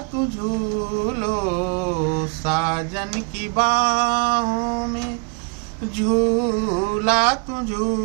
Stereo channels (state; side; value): quieter; left; 36.4 dB